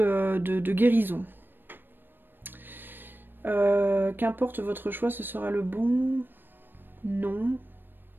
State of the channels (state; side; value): late; left; 0.095 ms